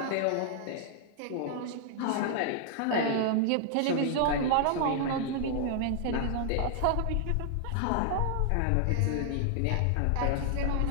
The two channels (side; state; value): both; different; correlation 0.00